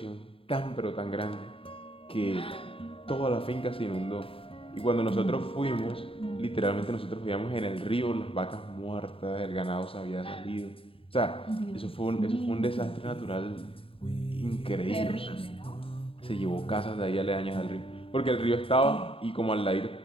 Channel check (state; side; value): late; right; 0.27 ms